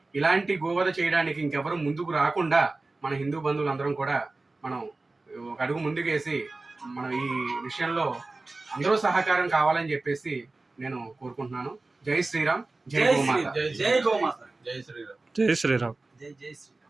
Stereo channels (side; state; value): left; quieter; 3.3 dB